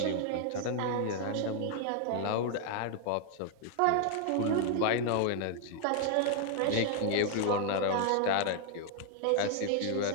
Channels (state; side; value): different; both; correlation 0.00